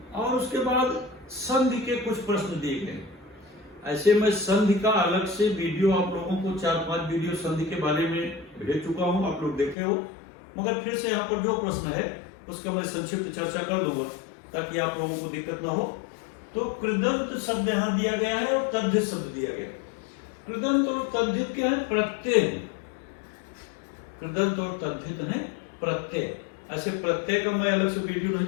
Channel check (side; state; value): right; drops out; at 9.8 s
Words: और उसके बाद संधि के कुछ प्रश्न दिए गए। ऐसे मैं संधि का अलग से वीडियो आप लोगों को 4-5 वीडियो संधि के बारे में भेज चुका हूं, आप लोग देखे हो, मगर फिर से यहाँ पर जो प्रश्न है उसका मैं संक्षिप्त चर्चा कर लूंगा ताकि आप लोगों को दिक्कत ना हो। तो कृदंत शब्द यहाँ दिया गया है और तद्धित शब्द दिया गया है। कृदंत और तद्धित के हैं प्रत्यय, कृदंत और तद्धित है प्रत्यय। ऐसे प्रत्यय का मैं अलग से वीडियो नहीं